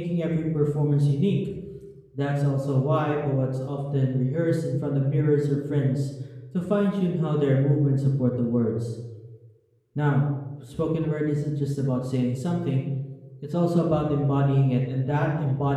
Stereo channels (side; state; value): both; identical; correlation 1.00